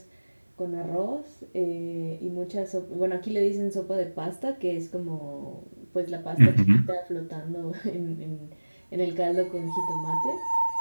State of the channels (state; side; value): inverted; both; correlation -1.00